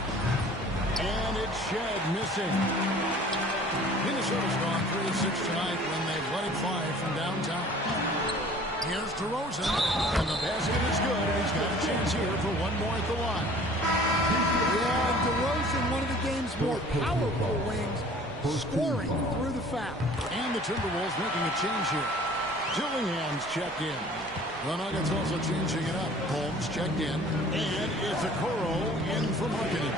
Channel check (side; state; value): both; normal; correlation 0.49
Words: And it's Shed missing. Minnesota's gone 3-6 tonight when they've let it fly from downtown. Here's DeRozan, and the basket is good, and he's got a chance here for one more at the line. Yeah, and DeRozan, one of the game's more powerful wings, scoring through the foul. And the Timberwolves making a change here. Dillingham's checked in. The Nuggets also changing it up. Holmes checked in, and it's a Okoro in for